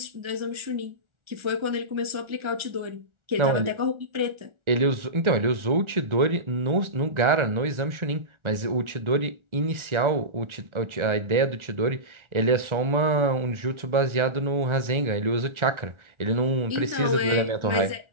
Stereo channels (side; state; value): left; late; 1.4 ms